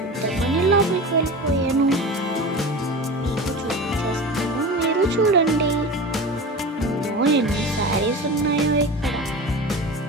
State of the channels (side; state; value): both; normal; correlation 0.30